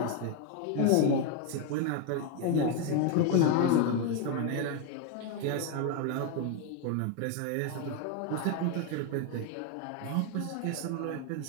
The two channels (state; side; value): different; both; correlation 0.01